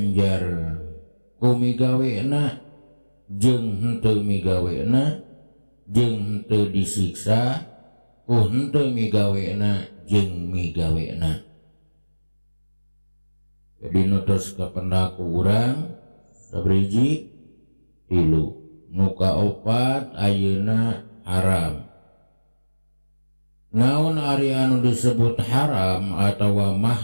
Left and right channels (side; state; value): both; inverted; correlation -1.00